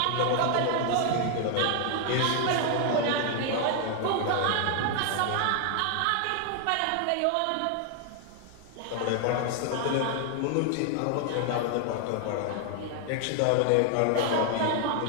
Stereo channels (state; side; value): different; both; correlation 0.00